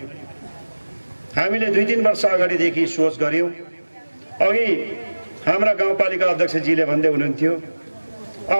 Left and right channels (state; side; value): inverted; both; correlation -1.00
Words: हामीले 2-3 वर्ष अगाडिदेखि सोच गर्यौं। अघि हाम्रा गाउँपालिका अध्यक्षजीले भन्दै हुनुहुन्थ्यो